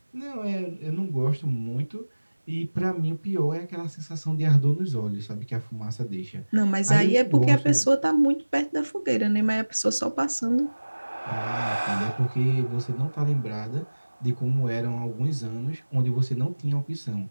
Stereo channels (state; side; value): inverted; both; correlation -1.00